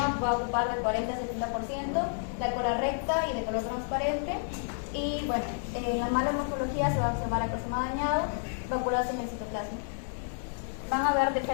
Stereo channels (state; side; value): silent; right; digital silence